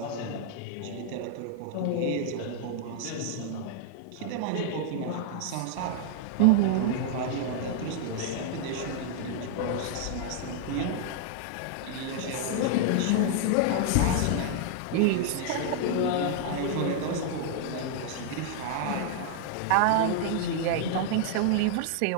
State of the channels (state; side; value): different; both; correlation -0.01